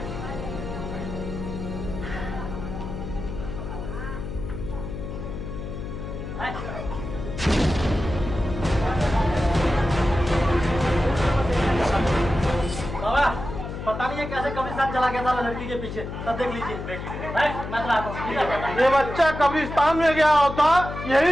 बाबा पता नहीं है कैसे कब्रिस्तान चला गया था लड़की के पीछे, तब देख लीजिए। मैं चला आता हूँ, ठीक है? ये बच्चा कब्रिस्तान में गया होता,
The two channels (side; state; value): left; noise; hum, 7 dB below the sound